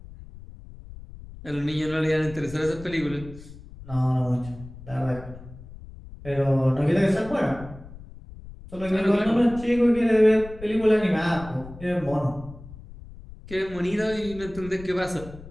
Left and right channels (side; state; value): left; noise; rumble, 16 dB below the sound